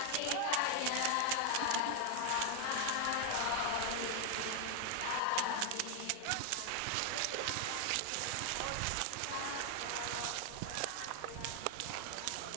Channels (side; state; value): both; different; correlation 0.00